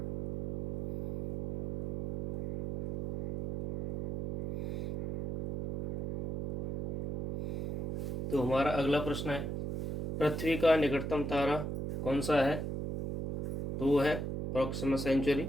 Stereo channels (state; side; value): noise; right; hum, 3 dB below the sound